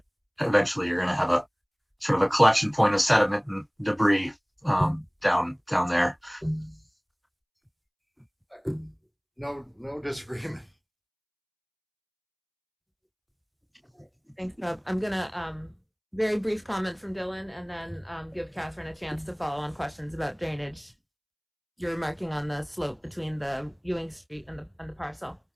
eventually you're going to have a sort of a collection point of sediment and debris down there. No disagreement. Thanks, Bob. I'm gonna very brief comment from Dylan and then give Catherine a chance to follow on questions about drainage. You're marking on the slope between the Ewing Street and the parcel.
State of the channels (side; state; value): both; identical; correlation 1.00